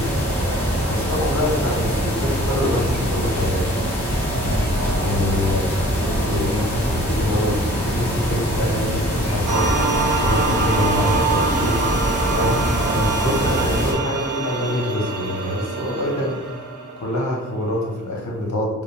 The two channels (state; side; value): normal; both; correlation 0.47